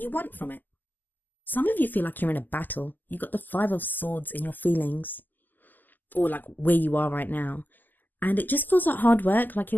want from it. Some of you feel like you're in a battle. You've got the Five of Swords in your feelings, or like where you are right now. And it just feels like hard work. Like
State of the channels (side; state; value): right; late; 0.086 ms